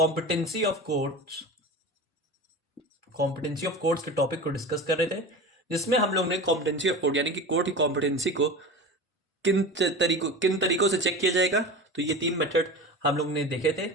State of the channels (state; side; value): normal; both; correlation 0.31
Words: ऑफ कोड्स के टॉपिक को डिस्कस कर रहे थे, जिसमें हम लोग ने कॉम्पिटेंसी ऑफ कोड यानी कि कोड की कॉम्पिटेंसी को किन तरीकों से चेक किया जाएगा। तो ये 3 मेथड हम लोग ने देखे थे,